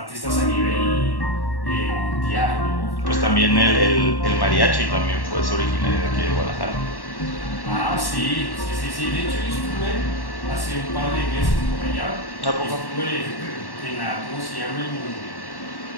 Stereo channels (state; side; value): late; right; 1.1 ms